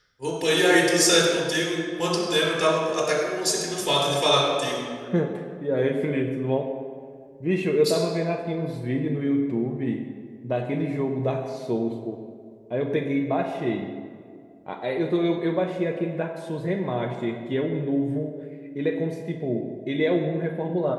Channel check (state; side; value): identical; both; correlation 1.00